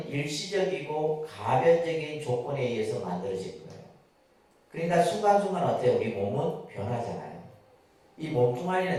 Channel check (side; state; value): both; identical; correlation 1.00